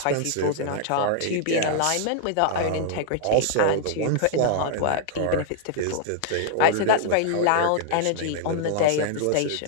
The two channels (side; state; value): both; different; correlation -0.01